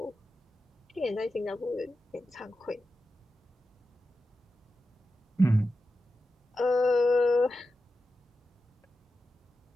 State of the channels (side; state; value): both; normal; correlation 0.91